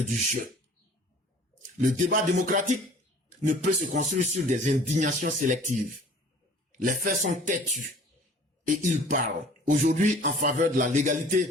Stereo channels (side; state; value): both; normal; correlation 0.50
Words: du jeu. Le débat démocratique ne peut se construire sur des indignations sélectives. Les faits sont têtus et ils parlent aujourd'hui en faveur de la